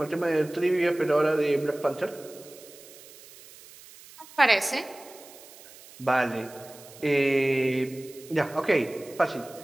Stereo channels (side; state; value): right; noise; hiss, 20 dB below the sound